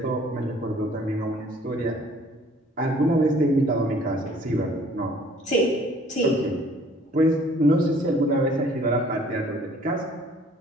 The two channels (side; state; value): both; normal; correlation 0.56